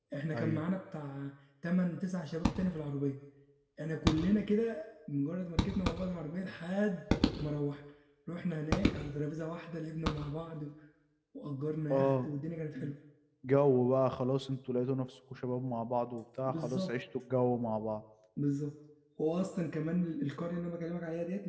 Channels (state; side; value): identical; both; correlation 1.00